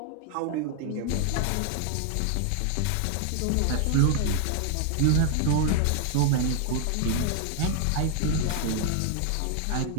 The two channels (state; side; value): different; both; correlation 0.00